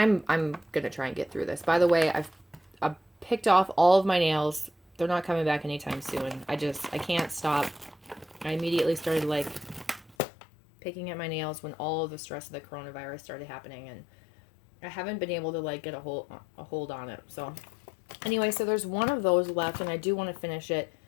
gonna try and get through this. By the way, I've picked off all of my nails. They're not coming back anytime soon. I can't stop. I immediately started like picking at my nails when all of the stress of the coronavirus started happening, and I haven't been able to like get a hold on it. So anyway, so there's one of those left, and I do want to finish it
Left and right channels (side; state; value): right; drops out; at 10.2 s